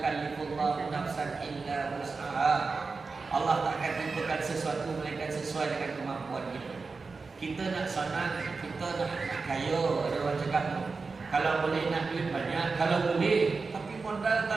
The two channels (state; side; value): quieter; left; 4.3 dB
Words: nafsan illa wus'aha. Allah tak akan tentukan sesuatu melainkan sesuai dengan kemampuan kita. Kita nak senang, kita nak kaya. Ada orang cakap tu, kalau boleh nak duit banyak, kalau boleh, tapi modal